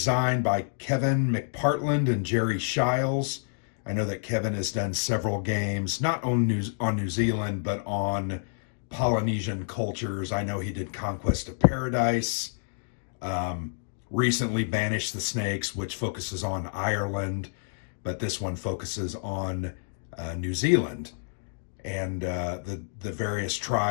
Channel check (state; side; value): silent; right; digital silence